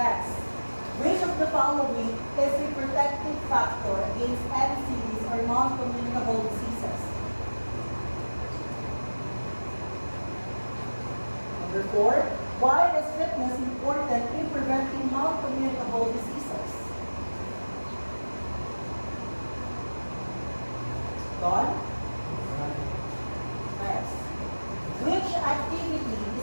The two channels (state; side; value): inverted; both; correlation -1.00